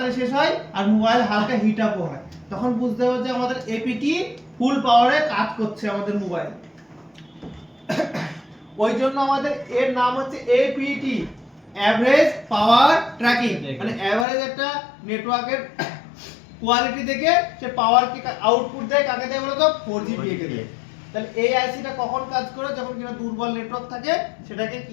শেষ হয় আর মোবাইল হালকা হিট আপও হয় তখন বুঝতে হবে যে আমাদের APT ফুল পাওয়ারে কাজ করছে আমাদের মোবাইল ওই জন্য আমাদের এর নাম হচ্ছে APT এভারেজ পাওয়ার ট্র্যাকিং মানে এভারেজ একটা নেটওয়ার্কের কোয়ালিটি দেখে সে পাওয়ার কে আউটপুট দেয় কাকে দেয় বলো তো 4GPA কে দেয় তাহলে এই আইসিটা কখন কাজ করে যখন কিনা দুর্বল নেটওয়ার্ক থাকে সেটাকে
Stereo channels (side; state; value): right; drops out; at 14.2 s